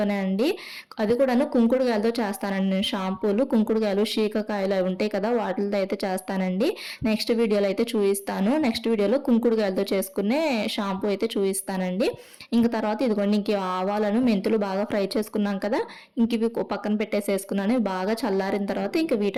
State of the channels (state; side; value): identical; both; correlation 1.00